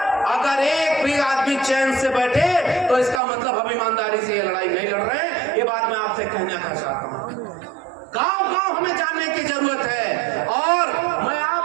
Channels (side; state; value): left; drops out; at 3.2 s